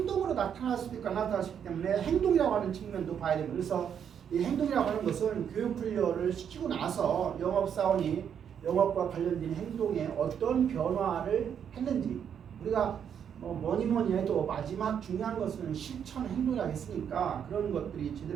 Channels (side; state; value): left; quieter; 8.2 dB